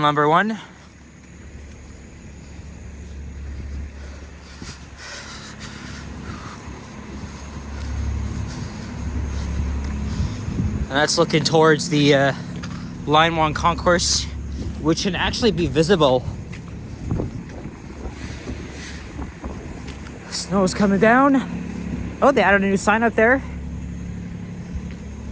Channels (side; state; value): both; identical; correlation 1.00